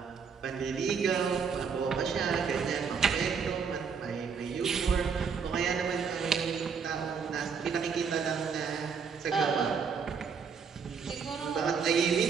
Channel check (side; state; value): left; quieter; 6.1 dB